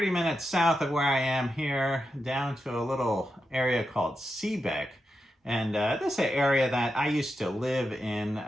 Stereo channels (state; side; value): normal; both; correlation 0.88